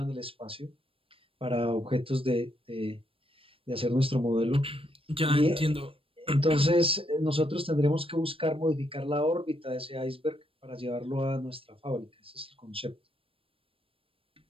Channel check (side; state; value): left; late; 0.27 ms